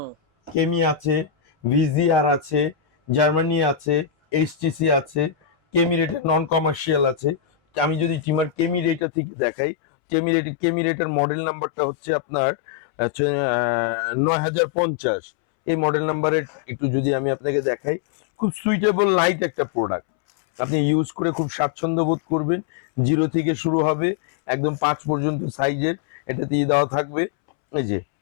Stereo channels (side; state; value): right; drops out; at 9.1 s